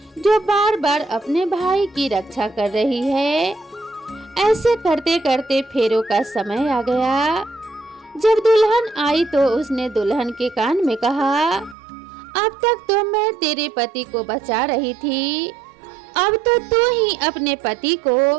जो बार बार अपने भाई की रक्षा कर रही है। ऐसे करते करते फेरों का समय आ गया। जब दुल्हन आई तो उसने दुल्हन के कान में कहा, अब तक तो मैं तेरे पति को बचा रही थी, अब तो तू ही अपने पति को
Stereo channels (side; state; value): left; drops out; at 11.8 s